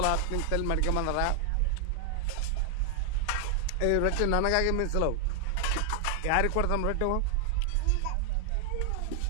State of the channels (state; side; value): different; both; correlation 0.00